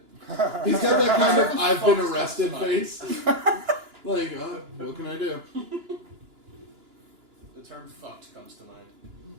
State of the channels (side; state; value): left; late; 2.9 ms